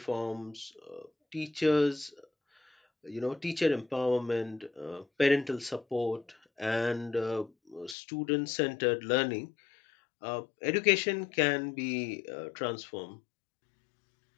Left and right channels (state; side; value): drops out; right; at 8.0 s